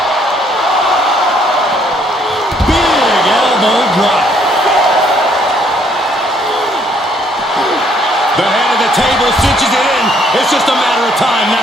Big elbow drop. The head of the table cinches it in. It's just a matter of time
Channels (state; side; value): normal; both; correlation 0.66